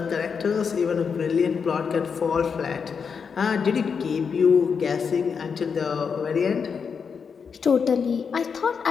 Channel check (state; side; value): quieter; right; 6.1 dB